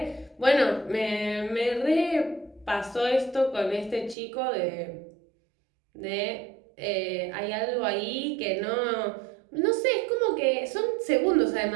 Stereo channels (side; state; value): left; drops out; at 4.2 s